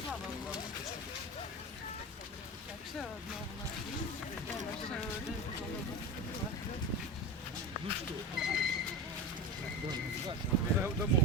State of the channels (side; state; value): both; normal; correlation 0.24